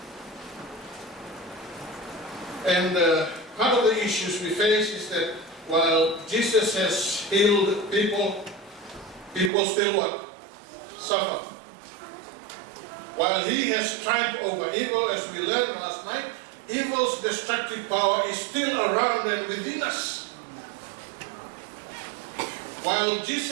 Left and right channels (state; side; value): drops out; left; at 9.5 s